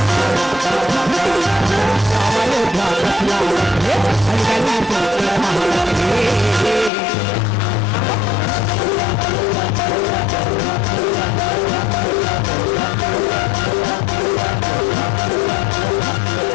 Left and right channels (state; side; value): drops out; right; at 6.9 s